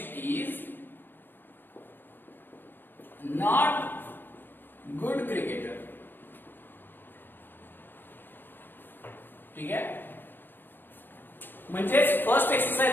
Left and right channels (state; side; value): late; right; 0.096 ms